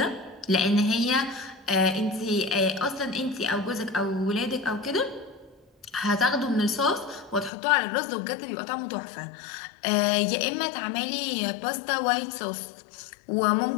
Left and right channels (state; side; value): drops out; right; at 7.5 s